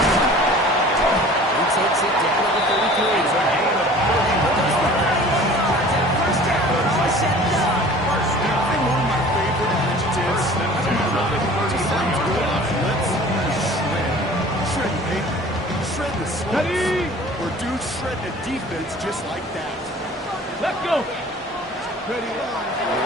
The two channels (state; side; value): normal; both; correlation 0.46